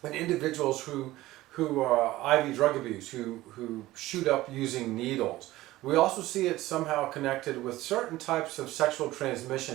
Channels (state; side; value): quieter; left; 17.0 dB